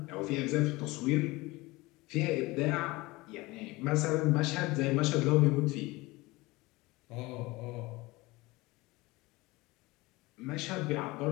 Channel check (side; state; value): right; quieter; 21.7 dB